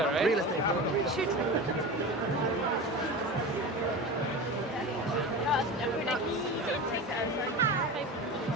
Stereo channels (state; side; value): normal; both; correlation 0.29